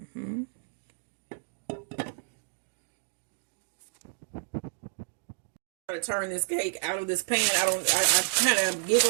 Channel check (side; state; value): left; silent; digital silence